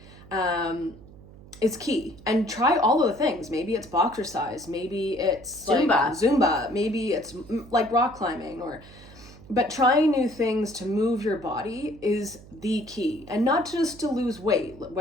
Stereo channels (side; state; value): right; noise; hum, 20 dB below the sound